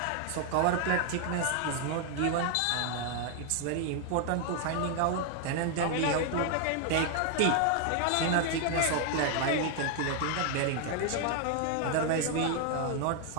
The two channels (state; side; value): different; both; correlation 0.00